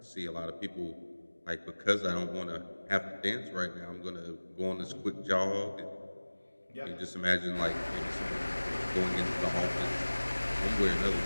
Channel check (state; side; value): inverted; both; correlation -1.00